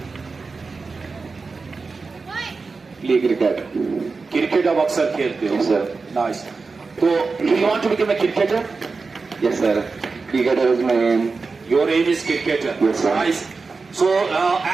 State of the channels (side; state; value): left; quieter; 4.3 dB